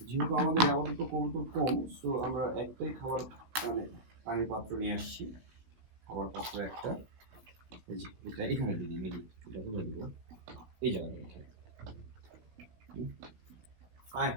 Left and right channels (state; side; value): late; left; 16 ms